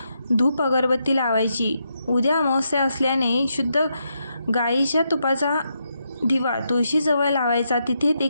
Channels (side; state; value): both; inverted; correlation -0.82